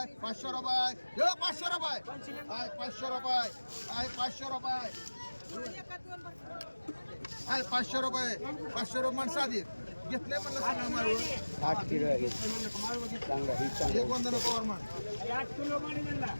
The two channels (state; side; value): inverted; both; correlation -1.00